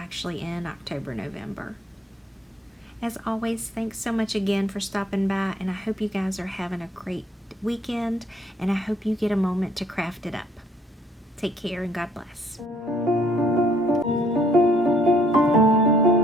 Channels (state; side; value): normal; both; correlation 0.64